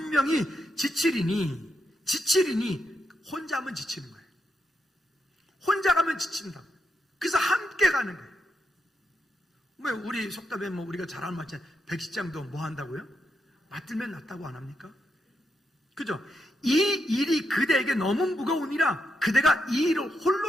지치리니 혼자 하면 지치는 거예요. 혼자 가면 지친다. 그래서 함께 가는 거예요. 왜 우리 속담에 우리가 잘 아는 말이잖아요. 백시장도 뭐 한다고요? 맞들면 낫다고 안 합니까? 그죠? 이 일이 그대에게 너무 무거우니라 그대가 이 일을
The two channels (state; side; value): normal; both; correlation 0.82